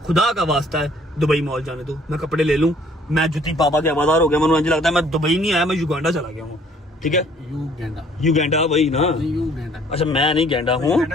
खुदा का वास्ता है दुबई मॉल जाने दो, मैं कपड़े ले लूं। मैं जुती पापा के हवादार हो गया, मुझे मुझे लगता है मैं दुबई नहीं आया, मैं युगांडा चला गया हूँ, ठीक है। युगांडा वही ना? अच्छा मैं नहीं गेंडा हूँ,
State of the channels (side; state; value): both; normal; correlation 0.59